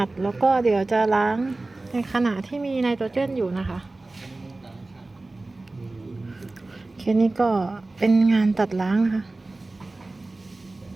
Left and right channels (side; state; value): left; quieter; 3.1 dB